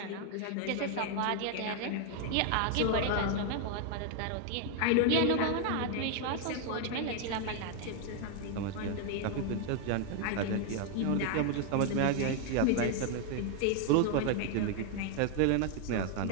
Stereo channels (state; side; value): different; both; correlation 0.00